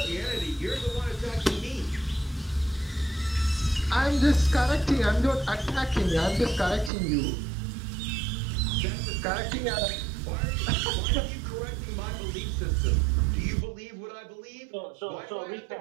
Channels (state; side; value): drops out; left; at 6.9 s